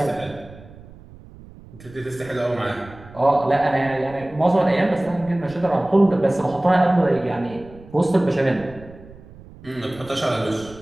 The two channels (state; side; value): noise; right; rumble, 20 dB below the sound